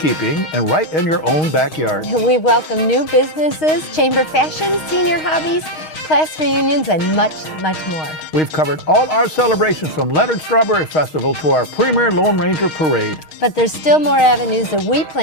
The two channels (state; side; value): late; right; 6.4 ms